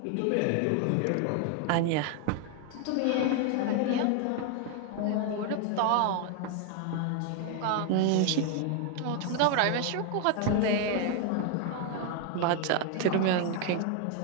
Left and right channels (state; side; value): different; both; correlation 0.00